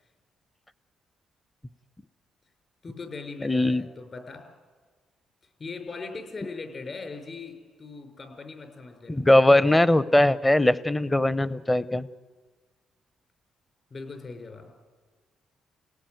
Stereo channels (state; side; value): normal; both; correlation 0.98